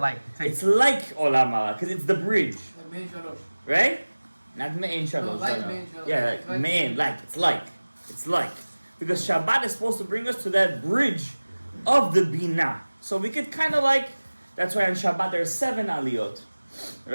It's like Olam Haba, because it's the bridge. Right? Not Me'ein Shalosh. Yeah, Me'ein, it's like. Because Shabbat is supposed to bring us to that bridge of the Bina. So we could kind of that's why on Shabbat there's 7 aliyot.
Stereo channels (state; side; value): inverted; both; correlation -1.00